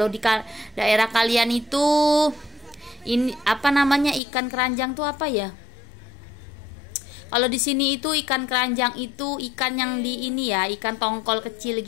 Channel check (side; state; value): right; drops out; at 4.2 s